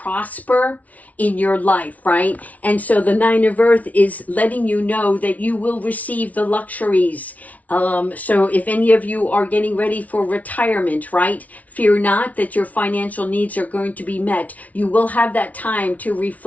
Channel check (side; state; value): right; late; 0.071 ms